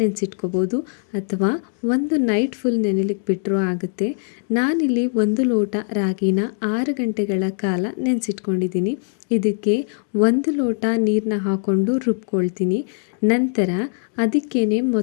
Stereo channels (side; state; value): right; silent; 65 dB below the other